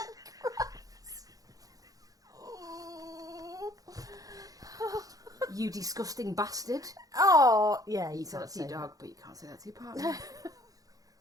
gross. You disgusting bastard. Oh, yeah, You say that to your dog, but you can't say that to your partner.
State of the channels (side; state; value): left; late; 0.17 ms